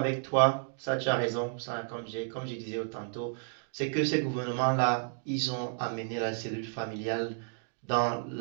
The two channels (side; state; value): left; silent; digital silence